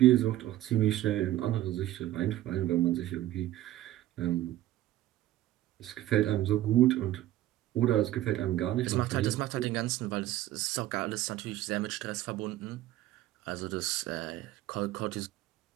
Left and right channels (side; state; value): left; quieter; 14.5 dB